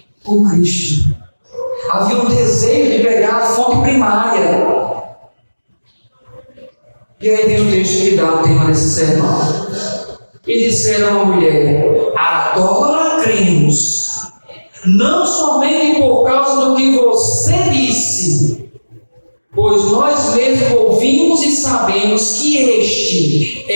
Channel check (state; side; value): inverted; both; correlation -1.00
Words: com Cristo. Havia um desejo de pegar a fonte primária. E aí tem um texto que dá o tema desse sermão. E disseram à mulher: agora cremos, não somente por causa do que você disse, pois nós mesmos ouvimos e sabemos que este